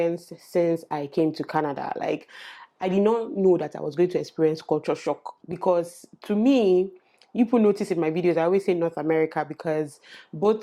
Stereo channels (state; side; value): identical; both; correlation 1.00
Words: since I came to Canada. Like, I did not know that I was going to experience culture shock, because to me, you will notice in my videos, I always say North America, because